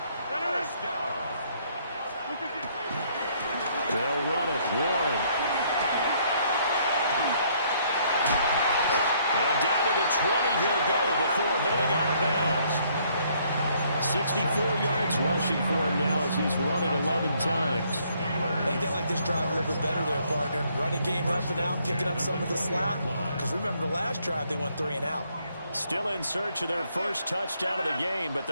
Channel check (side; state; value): both; inverted; correlation -0.66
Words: They'll run it. Warren. And down to the 20 he'll go before heading out of bounds. 64 yards rushing for him now as he's run it 11 times. I think they like this drive a little bit better there, partner. Running game helping out, picking up some of the slack. Because remember, the last drive they went 3 and out. Still in search of their first touchdown of the game, but